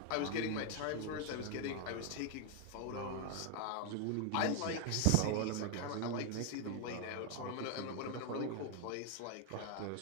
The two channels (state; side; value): different; both; correlation 0.01